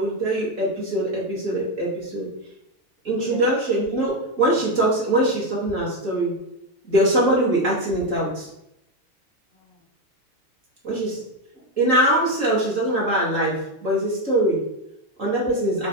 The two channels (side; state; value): left; late; 3.8 ms